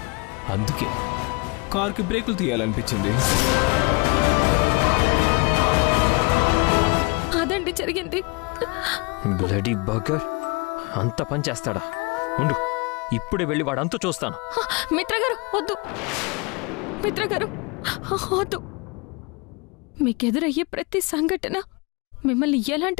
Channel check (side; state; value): right; quieter; 28.8 dB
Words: అందుకే కార్కి బ్రేకులు తీయాలనిపించింది. అదండి జరిగింది. బ్లడీ బర్గర్ అంత పని చేస్తాడా? ఉండు, ఇప్పుడే వెళ్ళి వాడంతా చూస్తాను. మిత్ర గారు వద్దు, మిత్ర గారు వద్దు. మీకెదురయ్యే ప్రతి సంఘటన మిమ్మల్ని